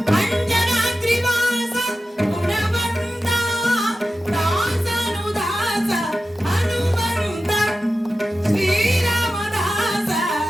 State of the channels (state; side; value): normal; both; correlation 0.93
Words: ಅಂಜನ ತ್ರಿವಾಸ ಗುಣವಂತ, ದಾಸನು ದಾಸ ಹನುಮಂತ, ಶ್ರೀರಾಮದಾಸ